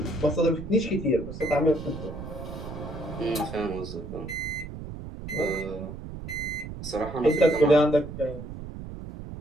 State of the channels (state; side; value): noise; right; rumble, 10 dB below the sound